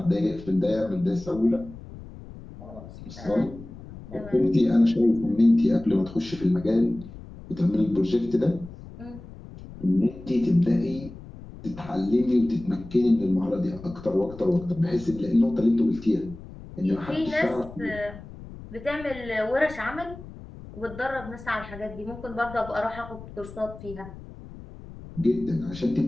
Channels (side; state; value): left; noise; rumble, 15 dB below the sound